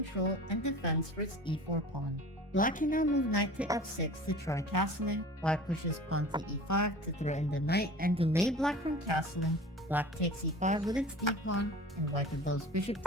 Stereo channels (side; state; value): both; normal; correlation 0.39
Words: and defense for its e4 pawn. Black can now move knight to f6 to try castling, white pushes pawn to e5 to threaten the knight and delay black from castling, black takes e5 with its d-pawn, and white develops bishop